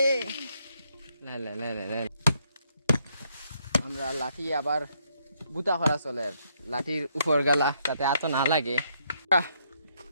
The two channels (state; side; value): inverted; both; correlation -0.73